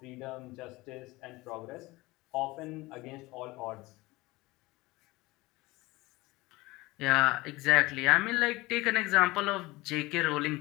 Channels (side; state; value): right; quieter; 21.1 dB